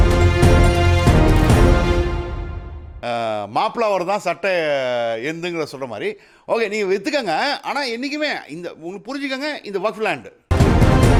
மாப்பிளாவர் தான் சட்டை எந்துங்கிற சொல்கிற மாதிரி. ஓகே, நீங்கள் விற்றுக்கங்க, ஆனால் என்றைக்குமே இந்த உங்களுக்கு புரிஞ்சுக்கங்க, இந்த வக்ஃப் லேண்டு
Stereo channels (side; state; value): both; identical; correlation 1.00